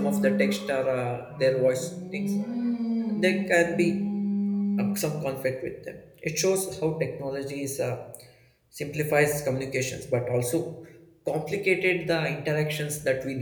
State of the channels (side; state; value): both; identical; correlation 1.00